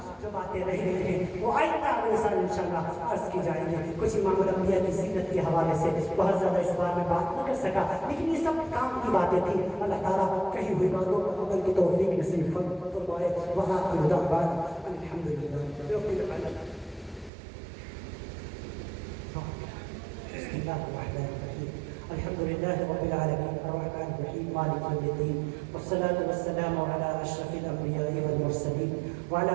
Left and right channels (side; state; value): left; drops out; at 17.3 s